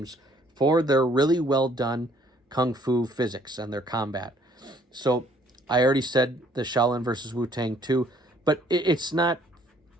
for their really well done kung fu physics and their combat. So I already said the Shaolin versus Wu-Tang 2, but it's not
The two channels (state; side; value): normal; both; correlation 0.62